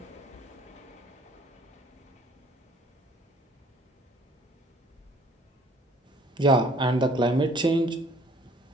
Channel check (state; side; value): normal; both; correlation 0.57